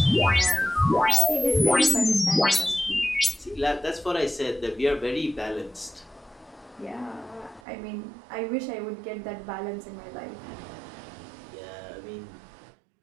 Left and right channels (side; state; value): left; drops out; at 7.6 s